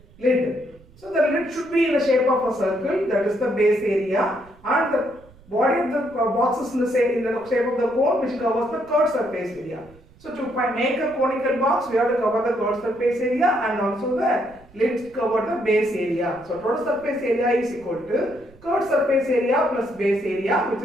lid. So the lid should be in the shape of a circle, that is the base area, and the body of the box is in the shape of the cone, which covers the curved surface area. So to make a conical box, we have to cover the curved surface area and also the lid cover the base area. So total surface area is equal to curved surface area plus base area, which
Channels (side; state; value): right; noise; rumble, 26 dB below the sound